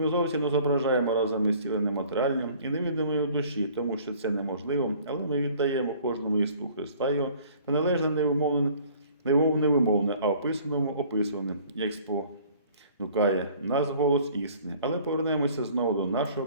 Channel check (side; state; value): both; inverted; correlation -0.53